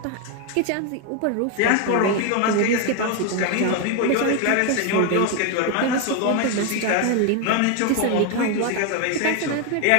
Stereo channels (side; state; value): both; different; correlation 0.01